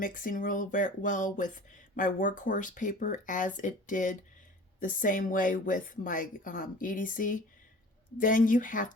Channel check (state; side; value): normal; both; correlation 0.43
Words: real well with my workhorse paper as it did the same way with my EDC. Then you have